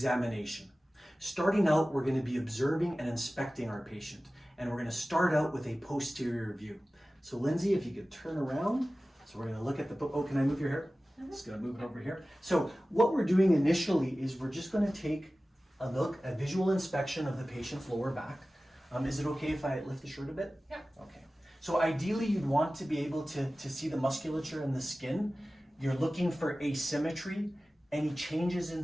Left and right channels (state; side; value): normal; both; correlation 0.96